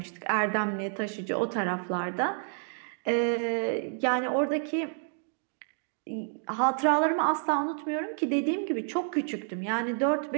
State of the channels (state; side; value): silent; left; 58 dB below the other